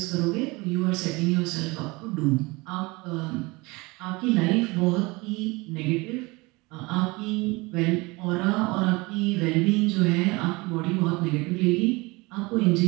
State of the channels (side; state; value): left; quieter; 24.3 dB